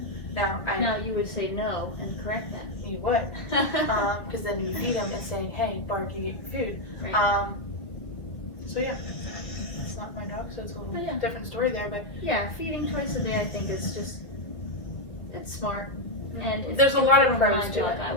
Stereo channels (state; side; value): late; right; 2.2 ms